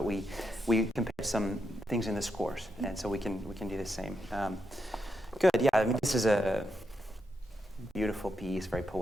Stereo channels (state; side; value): normal; both; correlation 0.83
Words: we compared some things in the scores, and so we can do the same. Good. Yeah. I mean, this is a beautiful piece, very